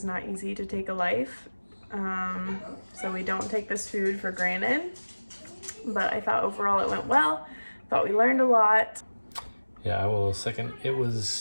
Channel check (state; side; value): inverted; both; correlation -1.00